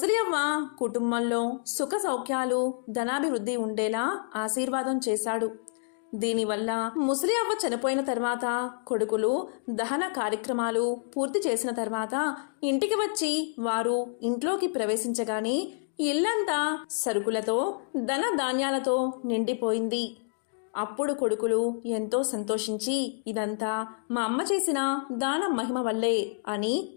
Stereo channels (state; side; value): silent; right; digital silence